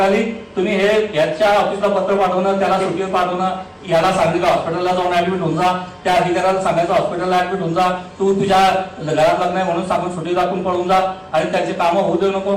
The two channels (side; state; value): both; identical; correlation 1.00